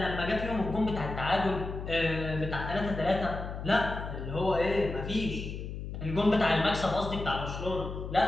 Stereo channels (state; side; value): noise; left; hum, 7 dB below the sound